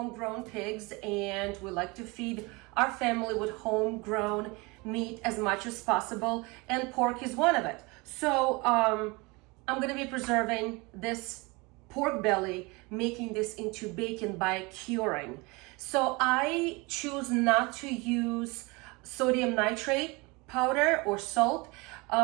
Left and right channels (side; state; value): left; quieter; 25.9 dB